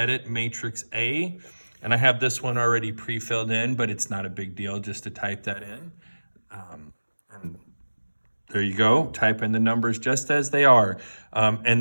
matrix A, and I have this one already pre-filled in, but it's not a big deal just to type that in. And there you go. Type in the numbers just as they are, and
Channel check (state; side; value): inverted; both; correlation -1.00